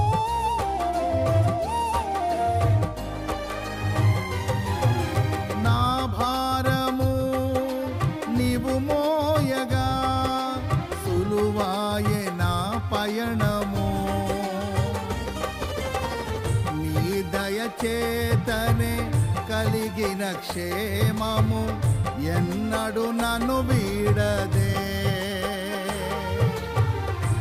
నా భారము నీవు మోయగా సులువాయే నా పయనము. నీ దయచేతనే కలిగిన క్షేమము ఎన్నడు నన్ను వీడదే.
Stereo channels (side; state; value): both; identical; correlation 1.00